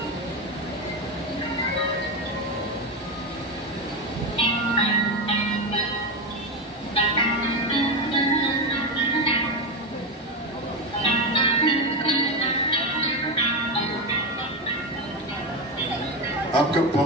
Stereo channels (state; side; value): normal; both; correlation 0.14